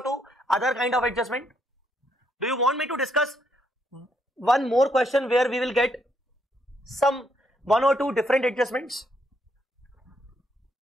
two other kind of adjustment. Do you want me to discuss one more question where we will get some one or two different adjustments?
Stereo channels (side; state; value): both; normal; correlation 0.74